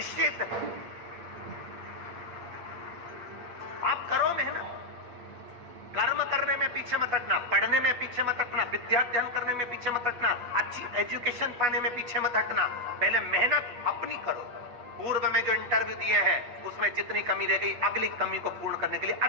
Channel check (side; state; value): left; late; 8.6 ms